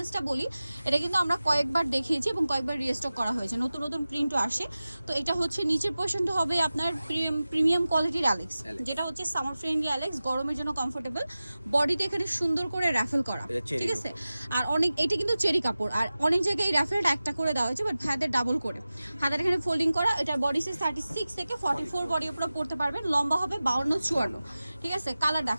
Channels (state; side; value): inverted; both; correlation -0.96